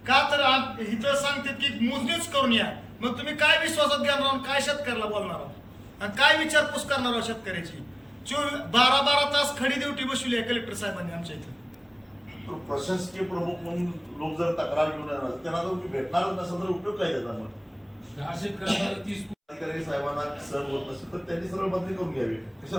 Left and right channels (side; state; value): both; identical; correlation 1.00